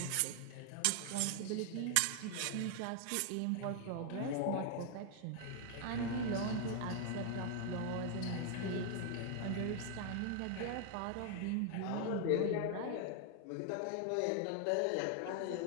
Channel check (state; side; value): different; both; correlation 0.00